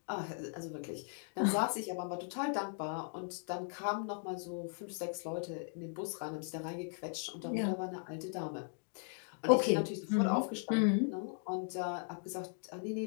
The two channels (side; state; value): right; silent; 52 dB below the other